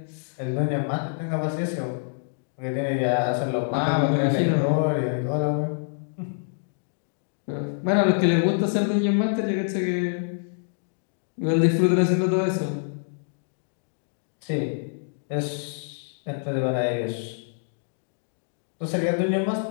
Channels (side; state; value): right; silent; digital silence